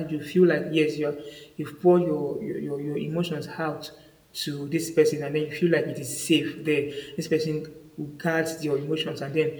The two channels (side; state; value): both; identical; correlation 1.00